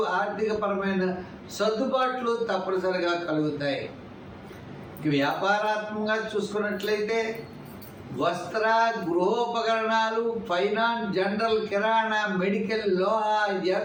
ఆర్థికపరమైన సర్దుబాట్లు తప్పనిసరిగా కలుగుతాయి. వ్యాపారాత్మకంగా చూసుకున్నట్లయితే వస్త్ర, గృహోపకరణాలు, ఫైనాన్స్, జనరల్, కిరాణా, మెడికల్, లోహ,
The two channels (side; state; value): both; identical; correlation 1.00